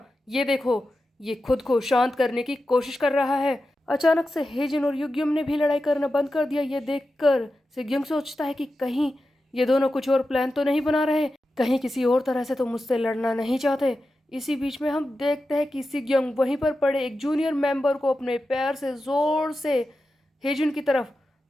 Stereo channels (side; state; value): both; normal; correlation 0.91